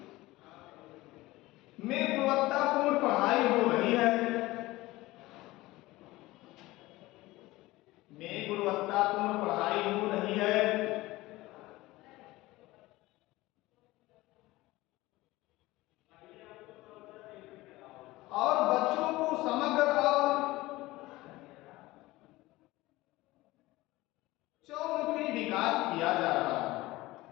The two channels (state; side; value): quieter; right; 19.1 dB